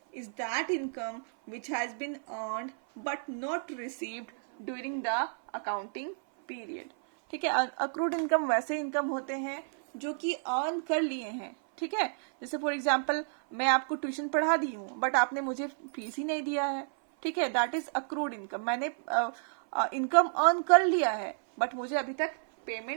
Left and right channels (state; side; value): silent; left; 57 dB below the other